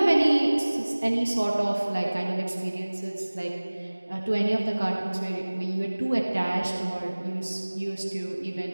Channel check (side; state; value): both; inverted; correlation -1.00